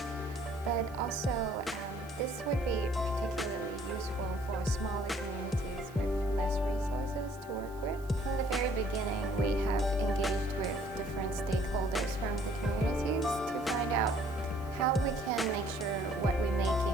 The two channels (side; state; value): right; noise; hiss, 24 dB below the sound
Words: But also, this would be particularly useful for smaller communities with less resources to work with. From the very beginning, we have engaged with different stakeholders from the communities to find out how we can make sure what we're